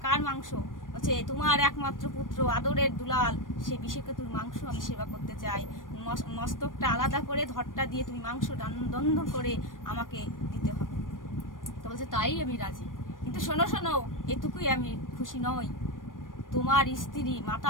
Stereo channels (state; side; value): late; right; 0.89 ms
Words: কার মাংস? বলছে, তোমার একমাত্র পুত্র আদরের দুলাল, সেই বিষকেতুর মাংস আমি সেবা করতে চাই। মস্তকটা আলাদা করে ধরটা দিয়ে তুমি মাংস দন্ধ করে আমাকে দিতে হবে। তো বলছে, তাই আমি রাজি, কিন্তু শোনো শোনো, এটুকুই আমি খুশি নই। তোমার স্ত্রী, মাতা